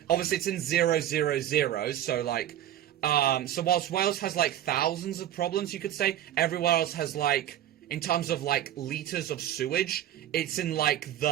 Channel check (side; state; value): left; quieter; 11.8 dB